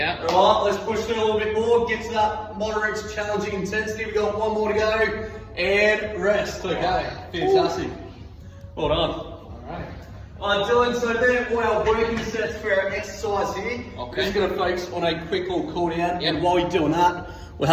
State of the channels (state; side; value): identical; both; correlation 1.00